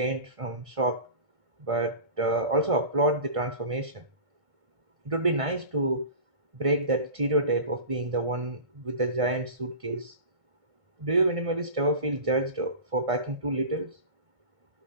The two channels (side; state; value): left; late; 1.5 ms